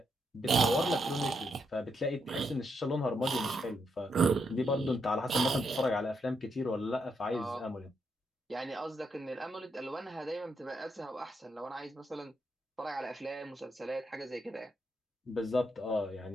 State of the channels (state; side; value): normal; both; correlation 0.80